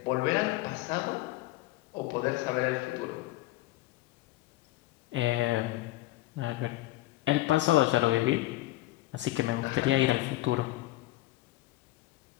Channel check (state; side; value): quieter; right; 17.4 dB